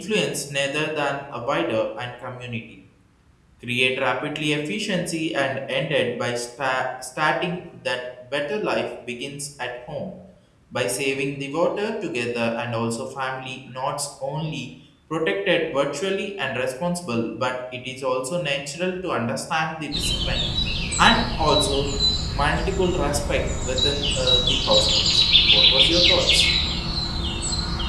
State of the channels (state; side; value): identical; both; correlation 1.00